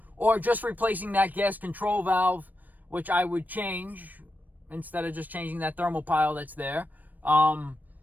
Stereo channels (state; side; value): late; left; 0.085 ms